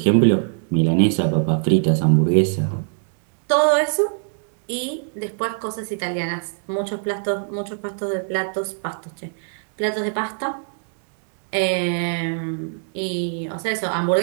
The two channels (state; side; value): silent; left; digital silence